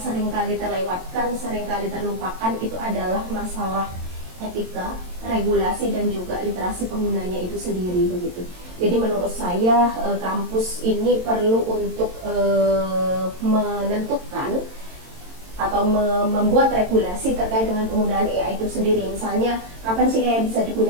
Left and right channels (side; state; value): left; late; 22 ms